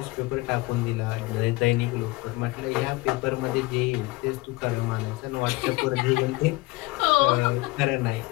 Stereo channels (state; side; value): quieter; right; 22.0 dB